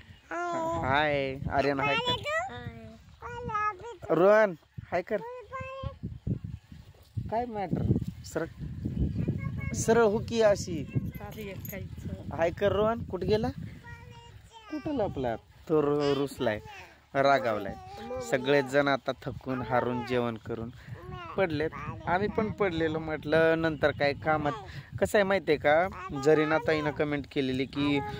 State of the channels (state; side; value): identical; both; correlation 1.00